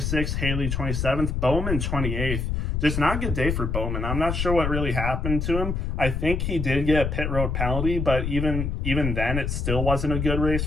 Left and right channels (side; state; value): left; noise; rumble, 1 dB below the sound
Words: Haley 27th, Bowman 28th. Just not a good day for Bowman. I'm not sure what really happened to him. I think he did get a pit road penalty, but even then, it still wasn't a good race